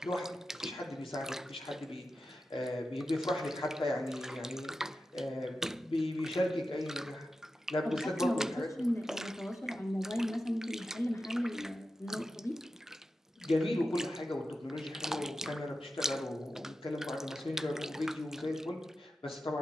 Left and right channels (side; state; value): both; normal; correlation 0.91